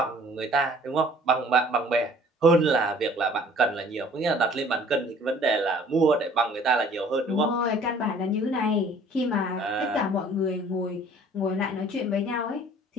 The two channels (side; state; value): both; normal; correlation 0.53